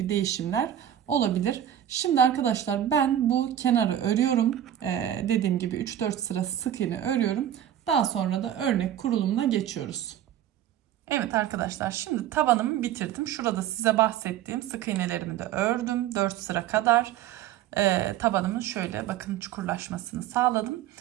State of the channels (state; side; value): quieter; left; 11.1 dB